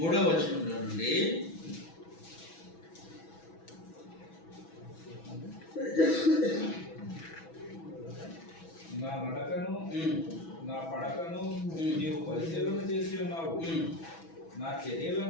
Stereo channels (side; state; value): right; late; 6.1 ms